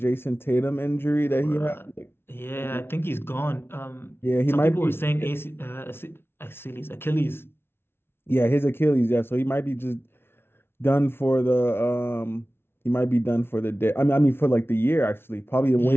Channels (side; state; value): right; late; 0.11 ms